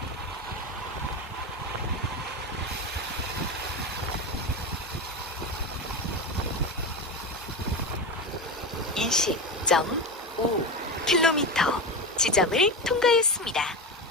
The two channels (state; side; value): normal; both; correlation 0.19